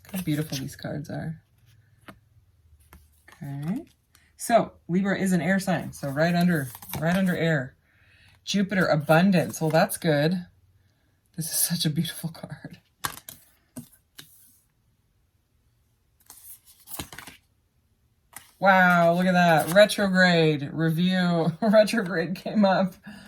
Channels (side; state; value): both; identical; correlation 1.00